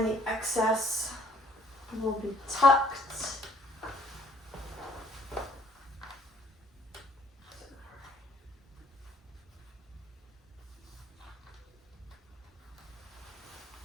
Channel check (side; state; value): both; normal; correlation 0.61